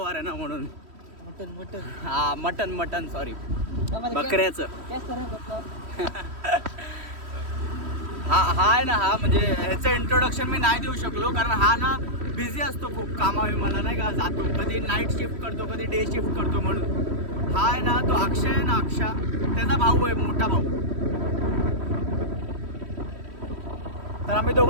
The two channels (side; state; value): left; late; 3.1 ms